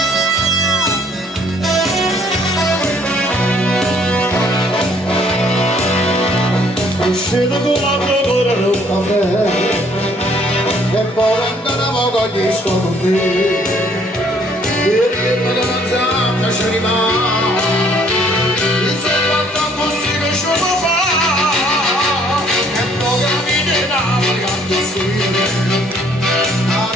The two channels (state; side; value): normal; both; correlation 0.62